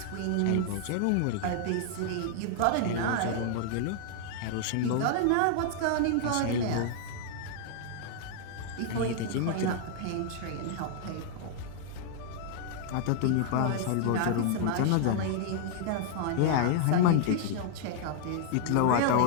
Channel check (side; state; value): both; different; correlation -0.01